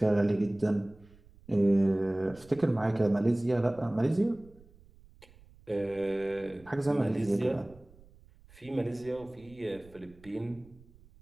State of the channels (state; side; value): noise; right; rumble, 25 dB below the sound